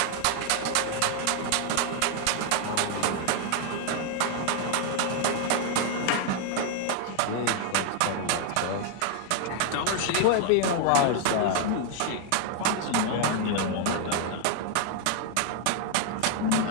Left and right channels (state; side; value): different; both; correlation 0.00